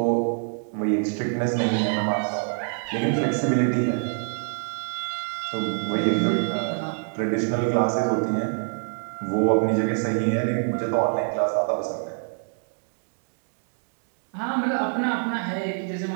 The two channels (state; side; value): silent; left; 61 dB below the other